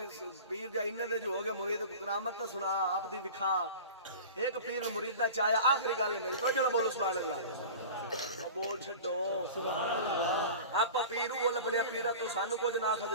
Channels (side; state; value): both; inverted; correlation -0.36